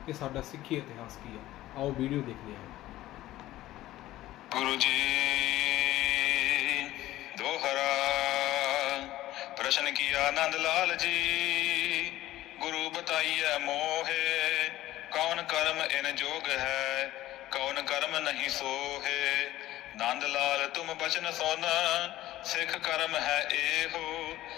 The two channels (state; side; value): quieter; right; 15.3 dB